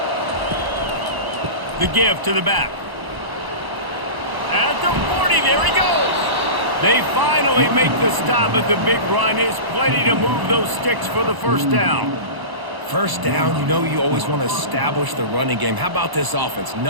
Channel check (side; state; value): left; late; 1.0 ms